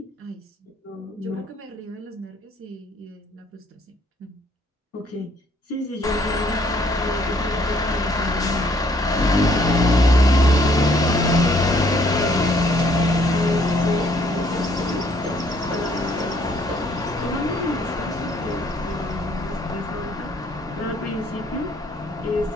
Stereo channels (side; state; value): both; normal; correlation 0.64